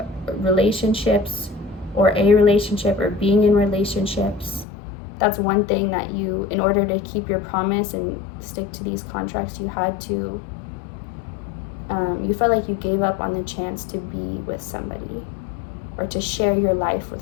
relationships, or a relationship, or being in relationships. That's one thing that you, in order to keep your promise and stick to these contracts, you had to, you felt like you gave up on the chance to be with somebody, or to share your life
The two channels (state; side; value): drops out; right; at 4.7 s